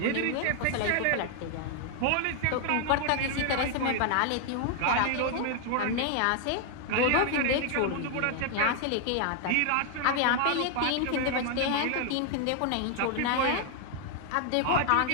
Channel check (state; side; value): different; both; correlation 0.00